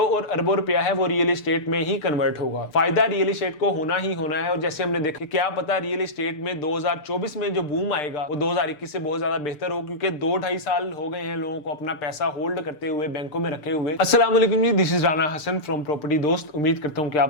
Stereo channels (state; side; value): late; right; 6.7 ms